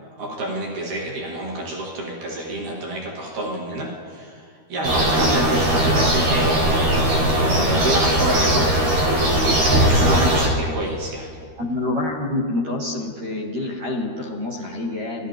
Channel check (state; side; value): late; left; 13 ms